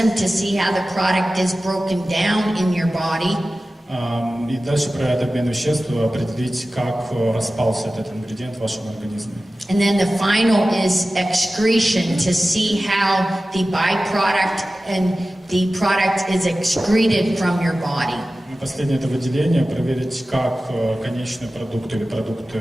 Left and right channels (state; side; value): normal; both; correlation 0.96